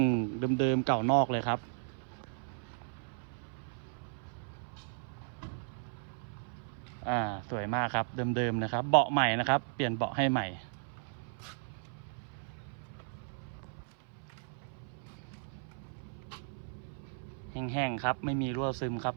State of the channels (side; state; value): left; silent; 54 dB below the other